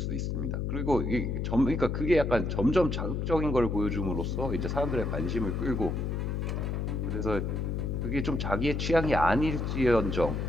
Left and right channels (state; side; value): noise; left; hum, 1 dB below the sound